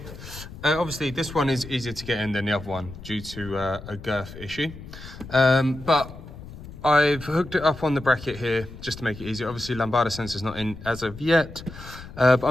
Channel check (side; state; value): left; noise; rumble, 14 dB below the sound